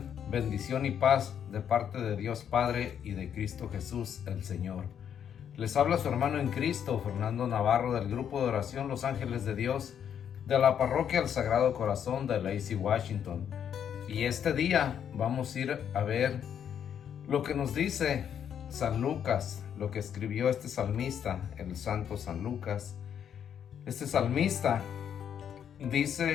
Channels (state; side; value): quieter; right; 8.7 dB